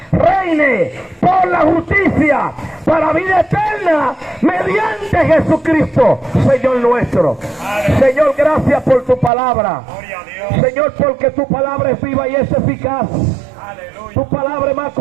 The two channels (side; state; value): left; drops out; at 9.3 s